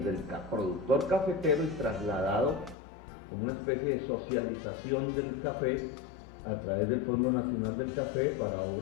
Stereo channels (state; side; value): drops out; right; at 2.8 s